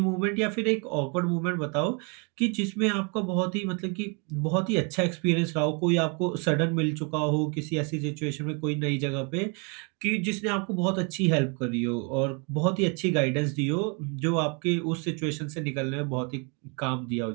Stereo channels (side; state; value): left; quieter; 34.3 dB